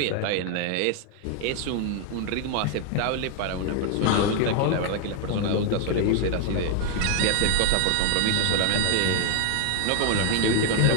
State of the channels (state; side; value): different; both; correlation 0.00